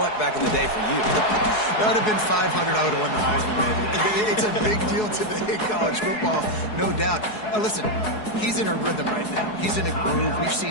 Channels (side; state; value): right; late; 4.7 ms